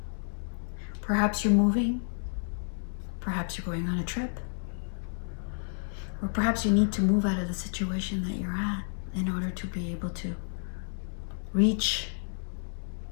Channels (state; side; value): silent; right; digital silence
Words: Perhaps you're moving. Perhaps you're going on a trip. Or perhaps you need to move out of the situation that you're at in order to be able to reach